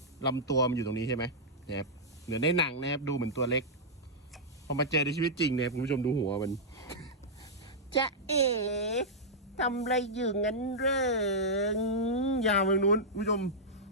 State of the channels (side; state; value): both; normal; correlation -0.09